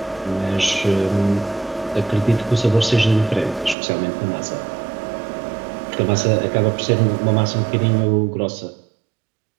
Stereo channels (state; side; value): drops out; left; at 3.8 s